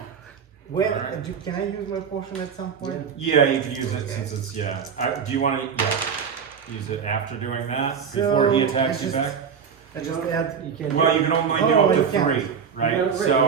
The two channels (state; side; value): quieter; left; 6.8 dB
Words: When Alright. can I use my potion at some point? Yeah, you can use it Okay. since it's do you want to? Yeah. Use it after doing that So, before he attacks I you just- back. I just add. You can't. Well, you can only do Oh, up you to can't. 3, right? You gotta So